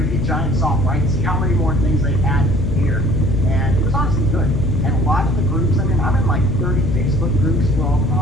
be giant soft, right? See how many more things they added here. And it was honestly good. And a lot of the groups, I'm in like 30 Facebook groups for all the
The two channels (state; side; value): noise; left; hum, 3 dB below the sound